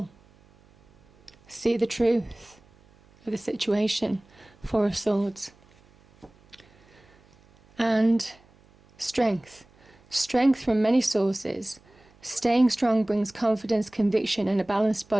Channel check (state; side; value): noise; right; hum, 29 dB below the sound